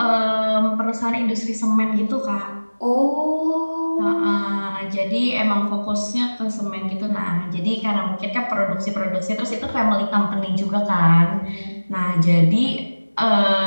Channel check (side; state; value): both; inverted; correlation -1.00